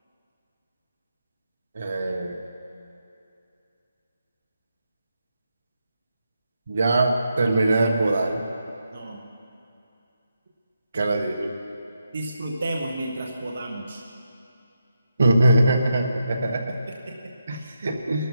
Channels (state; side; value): inverted; both; correlation -0.84